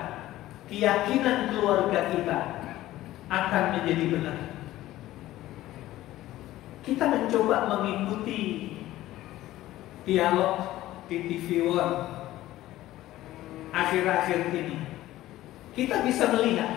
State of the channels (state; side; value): quieter; right; 15.4 dB